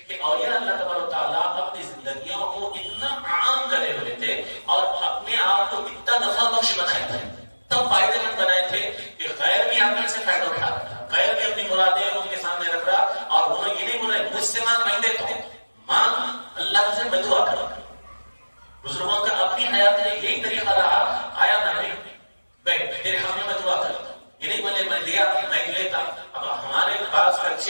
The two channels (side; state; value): both; inverted; correlation -1.00